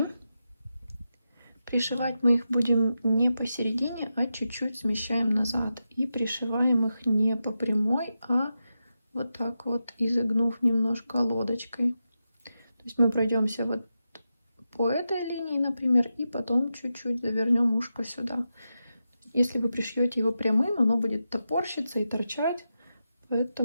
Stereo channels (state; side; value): inverted; both; correlation -0.89